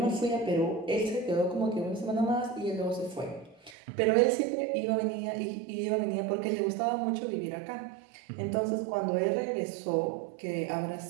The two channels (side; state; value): left; drops out; at 3.8 s